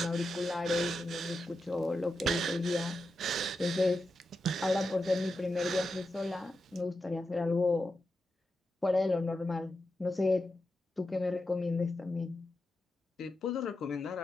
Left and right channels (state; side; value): normal; both; correlation 0.89